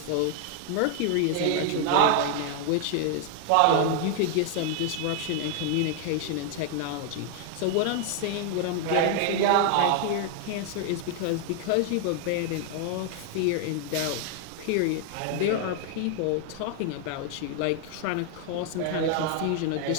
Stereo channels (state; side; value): different; both; correlation 0.00